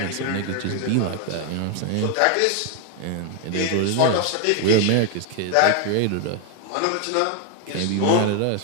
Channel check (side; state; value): both; different; correlation 0.00